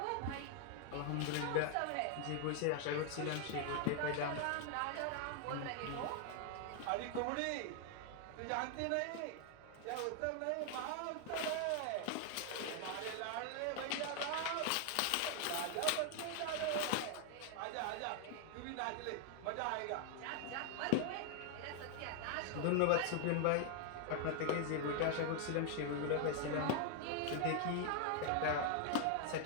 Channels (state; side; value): different; both; correlation 0.00